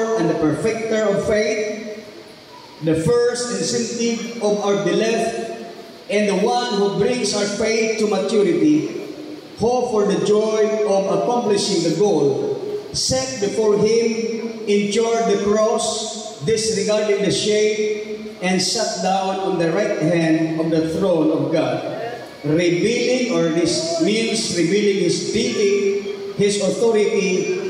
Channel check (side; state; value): both; identical; correlation 1.00